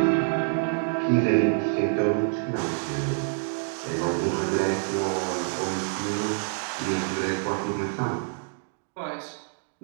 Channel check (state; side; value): silent; left; digital silence